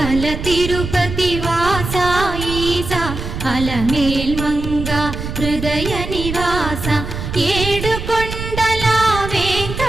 తిరుపతి వాస ఈసా అలమేల్ మంగ హృదయ నివాస ఏడు కొండల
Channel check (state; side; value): noise; right; rumble, 6 dB below the sound